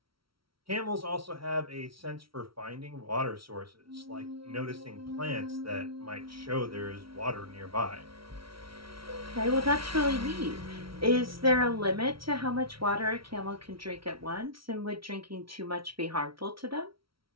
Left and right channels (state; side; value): late; left; 0.75 ms